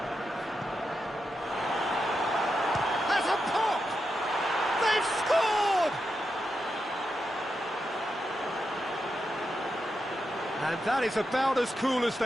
Has a pop! They've scored! And that is about as cool as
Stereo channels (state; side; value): normal; both; correlation 0.86